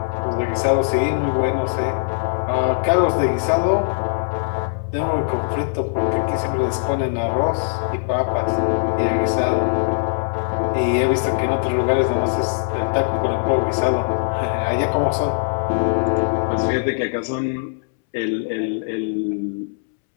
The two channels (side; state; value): right; silent; 65 dB below the other